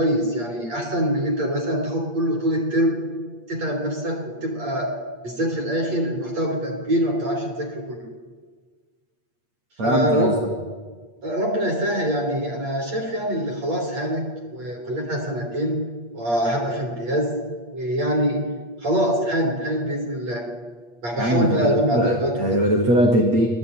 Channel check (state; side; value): late; left; 8.5 ms